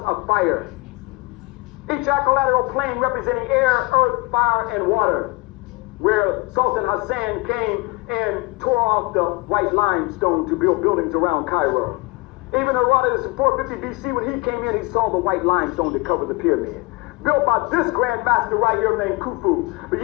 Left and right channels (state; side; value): quieter; right; 23.5 dB